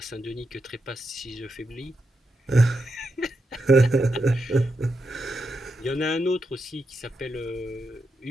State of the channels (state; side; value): normal; both; correlation 0.85